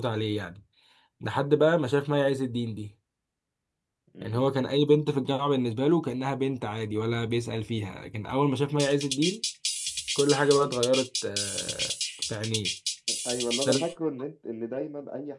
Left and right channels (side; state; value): both; identical; correlation 1.00